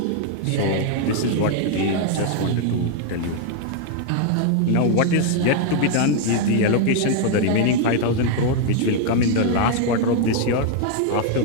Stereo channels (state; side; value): different; both; correlation 0.00